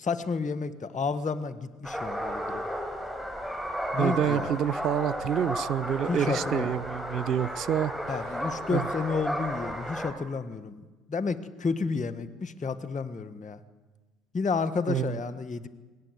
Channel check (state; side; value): normal; both; correlation 0.65